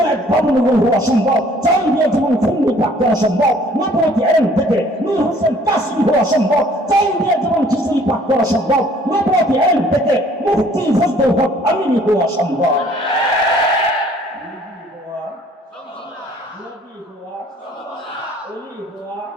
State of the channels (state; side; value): normal; both; correlation 0.57